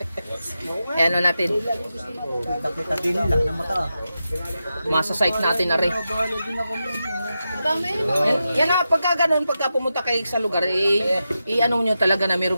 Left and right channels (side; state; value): both; inverted; correlation -0.89